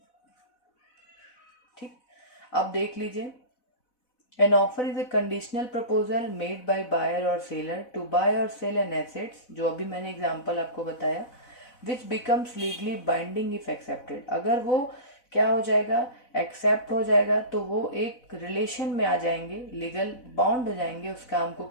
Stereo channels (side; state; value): right; late; 4.0 ms